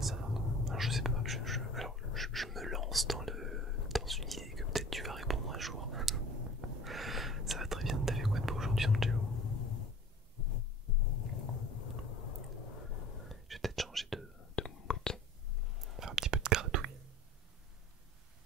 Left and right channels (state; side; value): normal; both; correlation 0.43